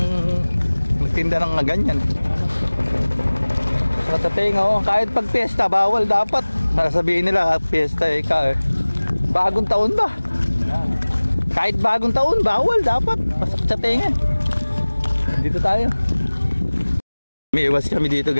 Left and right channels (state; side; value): inverted; both; correlation -1.00